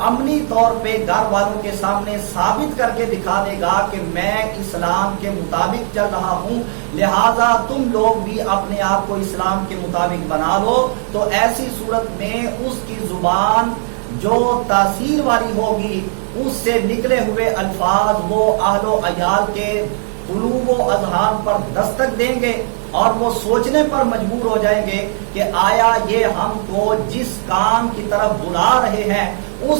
عملی طور پہ گھر والوں کے سامنے ثابت کر کے دکھا دے گا کہ میں اسلام کے مطابق چل رہا ہوں، لہذا تم لوگ بھی اپنے آپ کو اسلام کے مطابق بنا لو، تو ایسی صورت میں اس کی زبان جو تاثیر والی ہوگی، اس سے نکلے ہوئے الفاظ وہ اہل و عیال کے قلوب و اذہان پر دستک دیں گے اور وہ سوچنے پر مجبور ہو جائیں گے کہ آیا یہ ہم کو جس کام کی طرف بلا رہے ہیں اس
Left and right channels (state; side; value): silent; left; digital silence